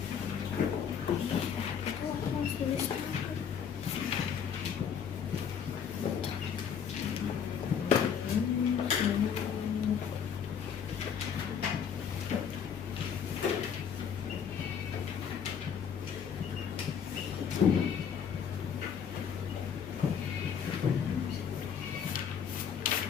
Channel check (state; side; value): quieter; right; 7.5 dB